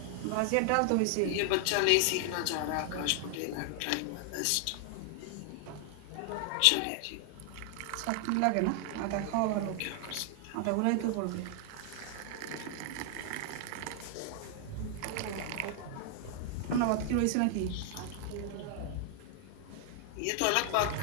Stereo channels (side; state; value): both; different; correlation 0.00